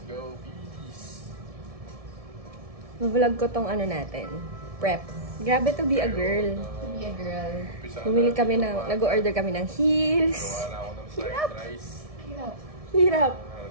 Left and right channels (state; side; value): late; left; 1.7 ms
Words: go, peace! Vlog ko tong ano natin, prep. Grabe to be a girl. Bumili kami ng, nag-order kami ng heels. Gawa na ako ng fried rice. Hirap.